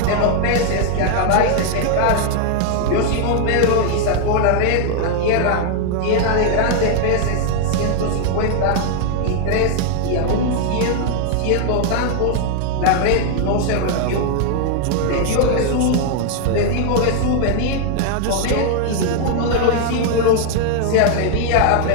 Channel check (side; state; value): both; different; correlation 0.00